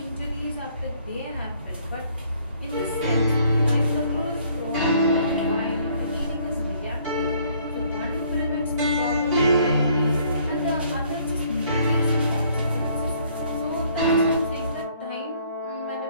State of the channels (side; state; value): both; inverted; correlation -0.62